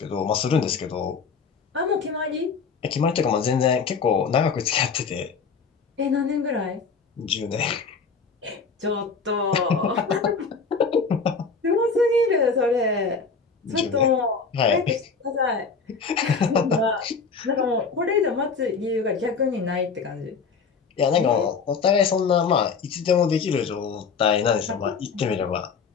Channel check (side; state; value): right; quieter; 5.2 dB